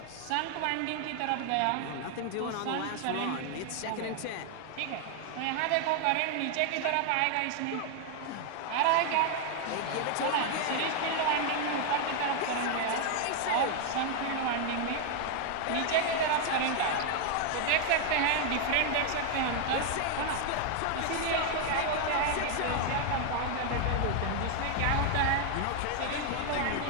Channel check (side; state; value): both; different; correlation 0.00